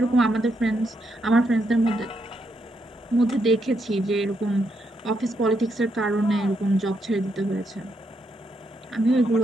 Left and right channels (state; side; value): normal; both; correlation 0.79